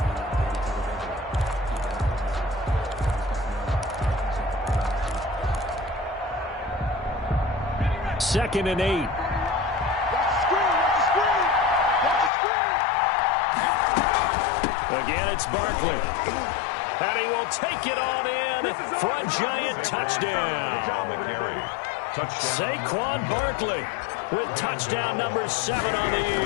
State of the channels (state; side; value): drops out; right; at 12.3 s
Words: Second and 8. Again, it's Barkley. And he will take it on in for a giant touchdown. Saquon Barkley with touchdown number 7 on the